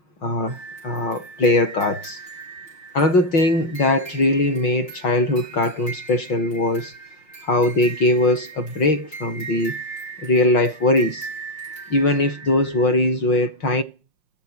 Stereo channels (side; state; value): right; late; 5.6 ms